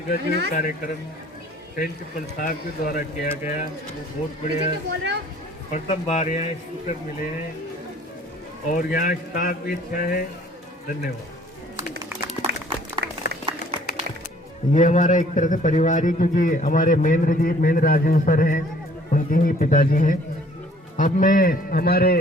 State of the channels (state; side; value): normal; both; correlation 0.56